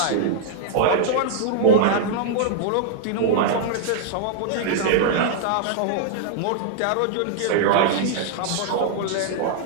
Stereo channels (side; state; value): both; different; correlation -0.01